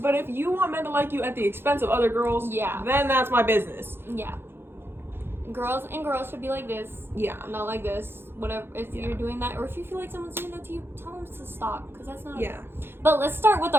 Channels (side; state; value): left; late; 0.11 ms